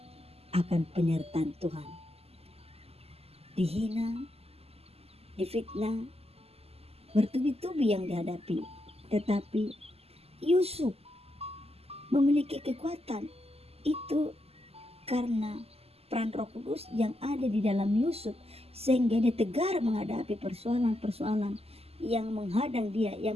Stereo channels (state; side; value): late; left; 0.29 ms